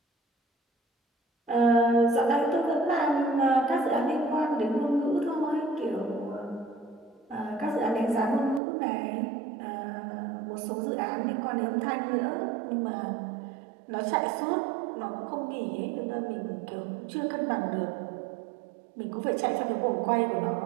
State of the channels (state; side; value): drops out; left; at 8.6 s